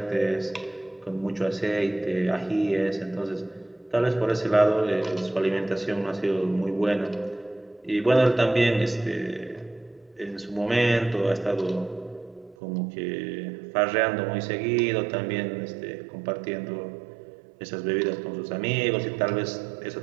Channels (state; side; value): drops out; left; at 12.6 s